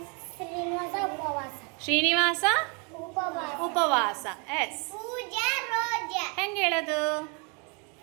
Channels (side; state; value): left; quieter; 34.5 dB